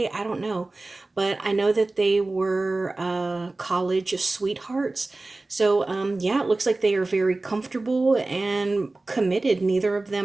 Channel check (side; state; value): left; quieter; 3.1 dB